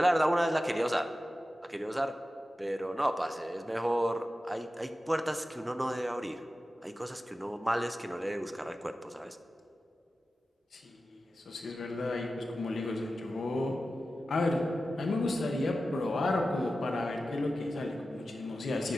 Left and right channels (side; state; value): both; normal; correlation 0.93